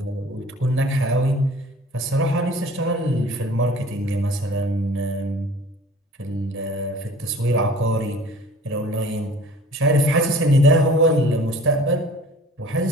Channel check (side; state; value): both; normal; correlation 0.47